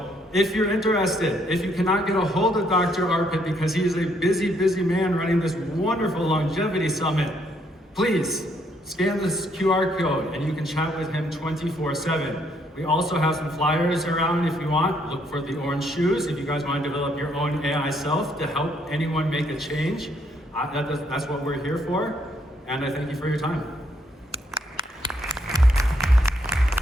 if you're interested, if you cannot get a hold of Dr. Arpit because he is a busy, busy man running this wonderful longevity summit, please scan this QR code and you can chat with him 24/7. We also have some flyers around if you want. Look for the orange shoes if you guys want to develop your own AI self to help anyone make a change. That's what we're here for. And I thank you for your time.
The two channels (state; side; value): normal; both; correlation 0.71